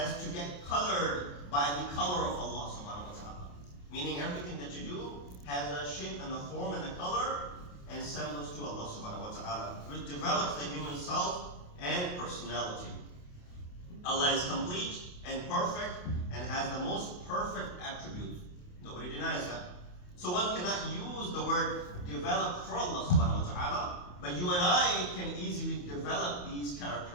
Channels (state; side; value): late; right; 28 ms